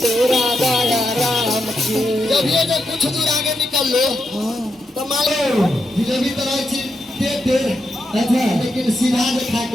तेरा दया राम की जब ये जो कुछ दूर आगे निकल लो तो मालूम जिलेबी तरह दे दे अच्छा लेकिन सीधा खा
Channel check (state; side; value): normal; both; correlation 0.84